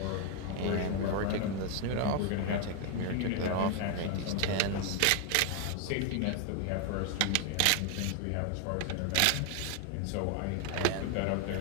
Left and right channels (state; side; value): different; both; correlation 0.01